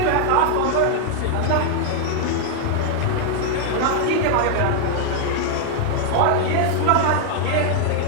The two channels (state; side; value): different; both; correlation 0.00